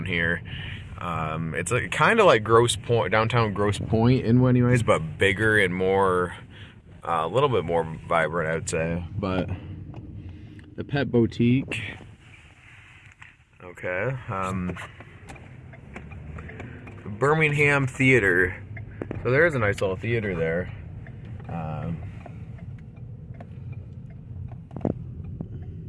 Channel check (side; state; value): both; identical; correlation 1.00